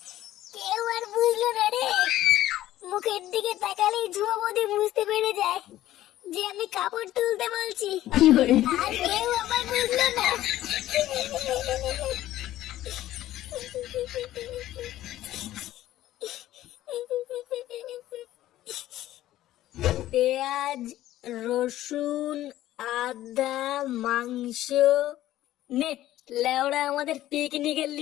কেউ আর বুঝলো না রে। মুখের দিকে তাকালেই ঝুমা বৌদি বুঝতে পেরে যায় যে আমি কাপড় তুলতে বলছি, আর কেউ আবার বুঝলো না। পেঁয়াজ, রসুন, আদা, মাংস নে লেওড়া, আমাদের পিকনিকের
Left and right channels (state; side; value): quieter; right; 14.2 dB